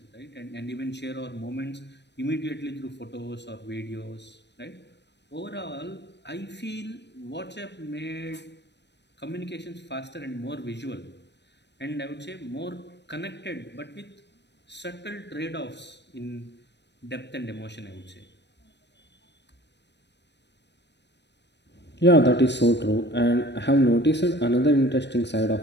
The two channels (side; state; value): right; late; 0.50 ms